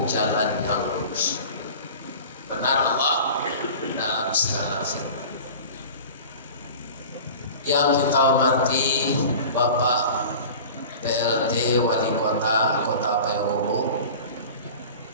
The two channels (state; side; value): inverted; both; correlation -0.38